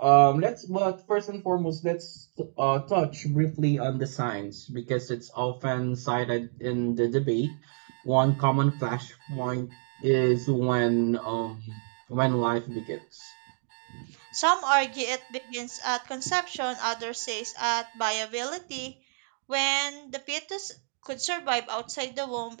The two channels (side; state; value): left; silent; digital silence